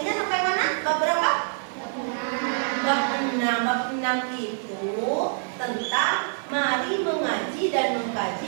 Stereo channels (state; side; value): silent; left; 61 dB below the other